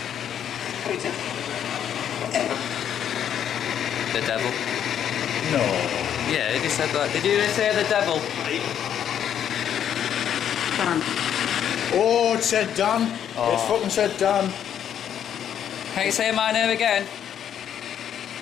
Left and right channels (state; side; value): quieter; right; 9.5 dB